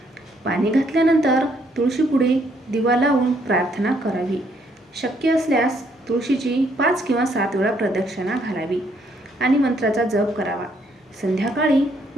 पाणी घातल्यानंतर तुळशीपुढे दिवा लावून प्रार्थना करावी। शक्य असल्यास तुळशीची 5 किंवा 7 वेळा प्रदक्षिणा घालावी आणि मंत्राचा जप करावा। संध्याकाळी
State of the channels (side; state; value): both; normal; correlation 0.70